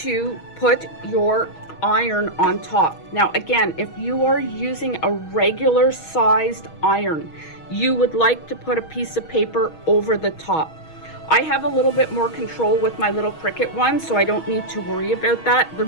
put your iron on top. Now again, if you are using a regular sized iron, you would like to put a piece of paper over the top. I have a little bit more control with my little Cricut one, so I don't need to worry about that. The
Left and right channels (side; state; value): right; late; 6.3 ms